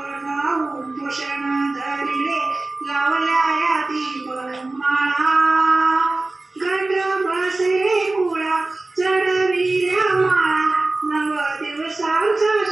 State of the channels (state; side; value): quieter; left; 3.1 dB